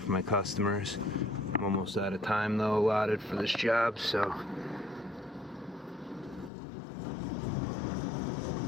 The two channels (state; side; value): drops out; right; at 6.5 s